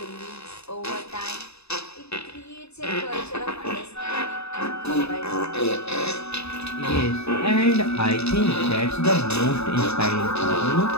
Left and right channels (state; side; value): late; right; 0.79 ms